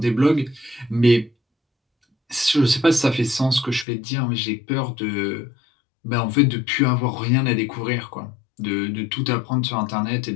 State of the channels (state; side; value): drops out; right; at 3.9 s